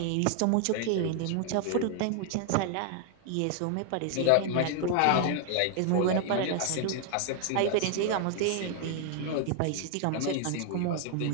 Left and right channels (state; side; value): different; both; correlation 0.00